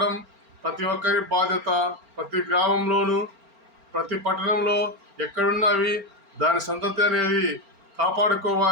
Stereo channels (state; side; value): late; left; 4.4 ms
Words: ప్రతి ఒక్కరి బాధ్యత. ప్రతి గ్రామంలోనూ ప్రతి పట్టణంలో ఎక్కడున్నా అవి దాని సంతతి అనేది